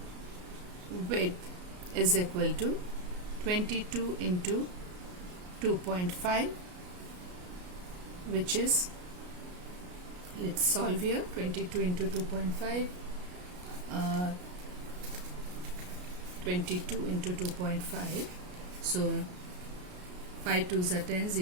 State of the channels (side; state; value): left; late; 33 ms